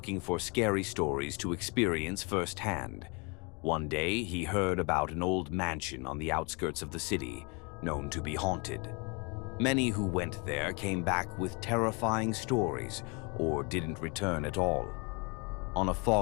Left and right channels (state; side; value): quieter; right; 31.5 dB